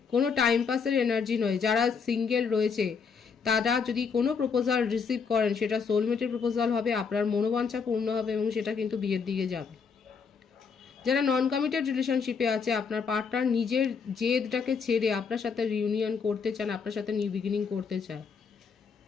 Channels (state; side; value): quieter; right; 5.7 dB